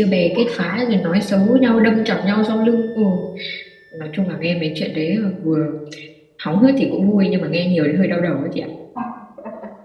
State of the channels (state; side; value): identical; both; correlation 1.00